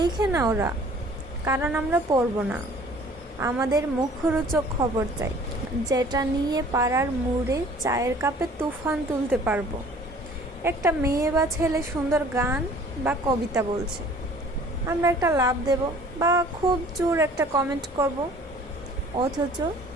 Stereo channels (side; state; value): both; normal; correlation 0.51